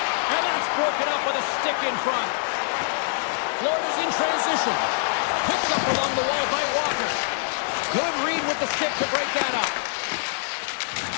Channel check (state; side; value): silent; right; digital silence